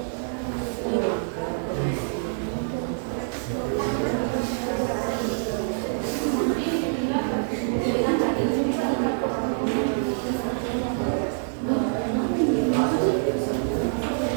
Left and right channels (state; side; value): silent; left; digital silence